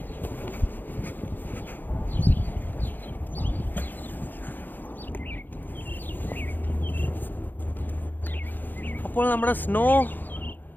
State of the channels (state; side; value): late; right; 0.088 ms